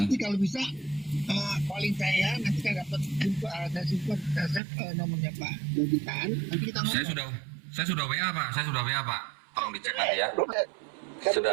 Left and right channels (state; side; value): drops out; left; at 4.6 s